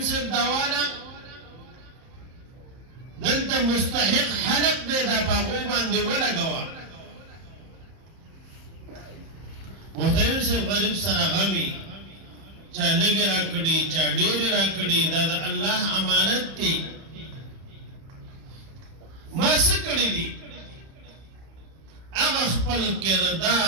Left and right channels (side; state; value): left; late; 30 ms